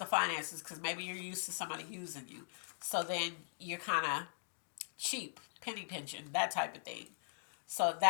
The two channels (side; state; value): right; silent; digital silence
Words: finances because maybe you're used to somebody using you. So then you're kind of cheap, penny pinching, that type of thing. So